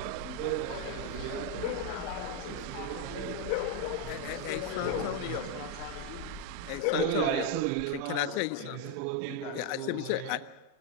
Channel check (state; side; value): different; both; correlation 0.01